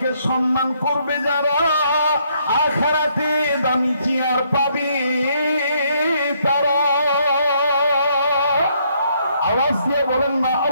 সম্মান করবে যারা, আখিরাতে দামি চেয়ার পাবে তারা। আওয়াজ দিয়ে বলেন না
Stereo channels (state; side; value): inverted; both; correlation -0.70